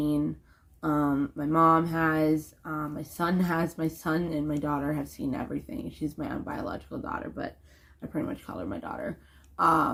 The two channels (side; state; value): both; identical; correlation 1.00